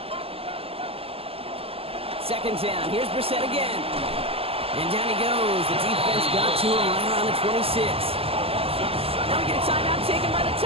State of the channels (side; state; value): left; late; 0.28 ms